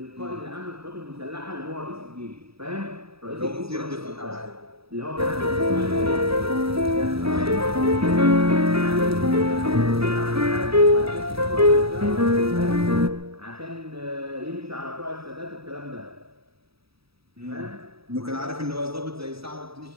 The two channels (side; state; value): left; late; 0.77 ms